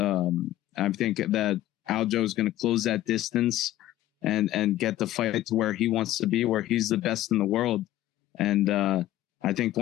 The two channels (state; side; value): quieter; right; 14.3 dB